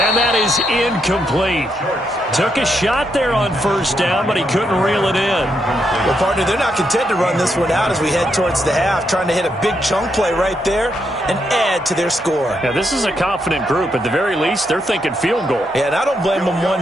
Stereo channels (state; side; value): normal; both; correlation 0.79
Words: that is incomplete. Took a shot there on first down, but he couldn't reel it in. Well, partner, they're not content to run this one out as we head towards the half, trying to hit a big chunk play right there and add to their score. Yeah, this is a confident group. At the very least, they're thinking field goal. Yeah, and I don't blame them